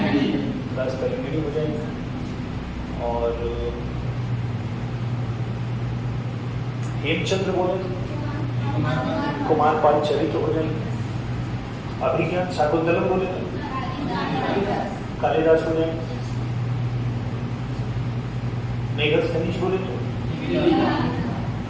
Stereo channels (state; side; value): identical; both; correlation 1.00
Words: क्लास करेंगे हो जाएगी। और हेमचंद्र बोले तो कुमार पाल चरित्र हो जाएंगे। अभिज्ञान शाकुंतलम बोले तो कालिदास हो जाएंगे। मेघस खनिज बोले तो